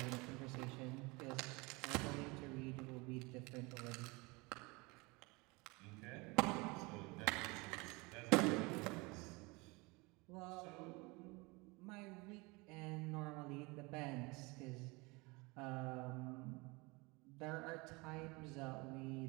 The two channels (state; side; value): quieter; left; 25.9 dB